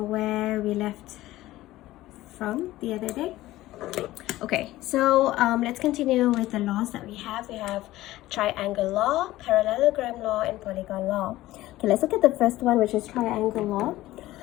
we left from the other day. Okay, so let's continue with the laws that we have. We have triangle law, parallelogram law, and polygon law. Okay, let's look at the first one, which is triangle law.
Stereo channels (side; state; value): right; quieter; 16.4 dB